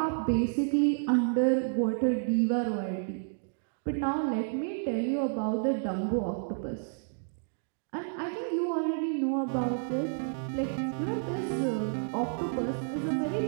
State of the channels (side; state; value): left; silent; digital silence